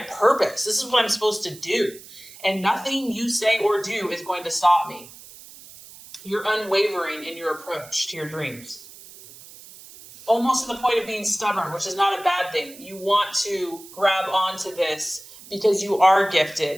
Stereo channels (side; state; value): right; noise; hiss, 19 dB below the sound